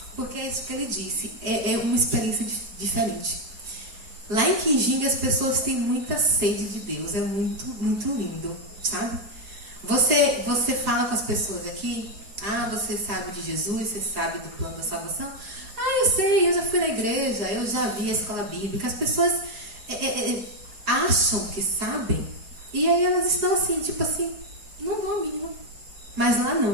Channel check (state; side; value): late; left; 4.4 ms